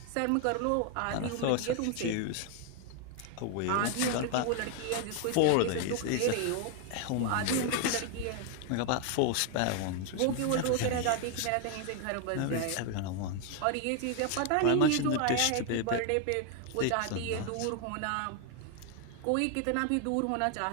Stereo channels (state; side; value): different; both; correlation 0.00